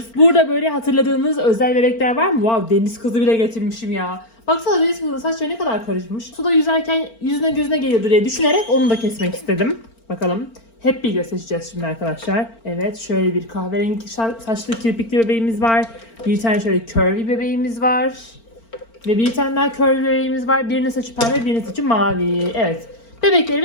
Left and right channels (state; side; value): late; right; 4.4 ms